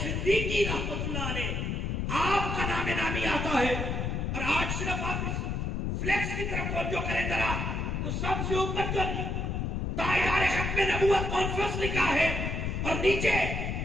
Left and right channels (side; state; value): left; noise; rumble, 1 dB below the sound